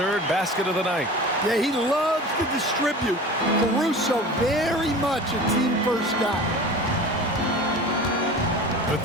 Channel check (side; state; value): both; normal; correlation 0.37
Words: basket of the night. Yeah, he loves to distribute. Caruso very much a team-first guy. The